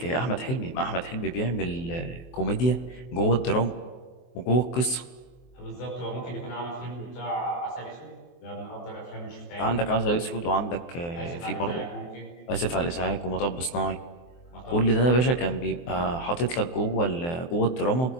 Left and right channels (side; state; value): right; late; 23 ms